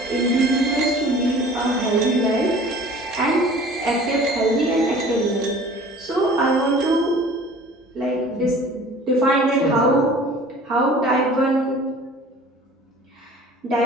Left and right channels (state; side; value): normal; both; correlation 0.46